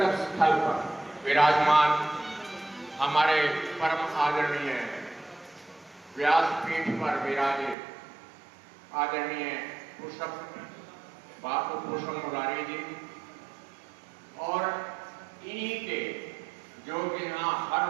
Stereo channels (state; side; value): drops out; left; at 7.8 s